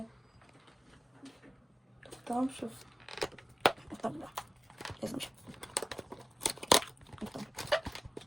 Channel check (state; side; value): normal; both; correlation 0.97